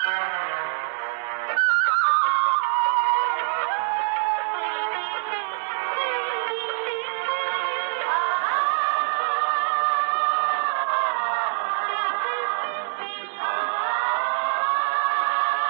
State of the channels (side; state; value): left; silent; 62 dB below the other